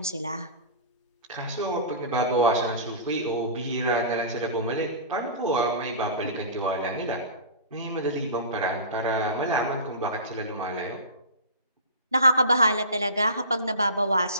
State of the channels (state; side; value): inverted; both; correlation -0.33